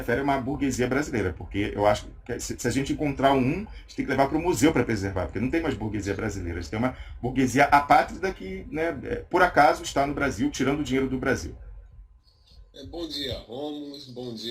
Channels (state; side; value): identical; both; correlation 1.00